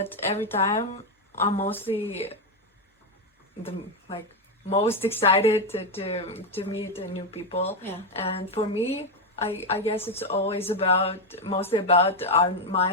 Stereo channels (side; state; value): both; normal; correlation 0.06